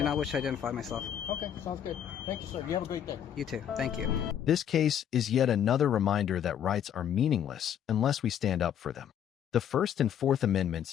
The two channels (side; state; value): right; quieter; 9.5 dB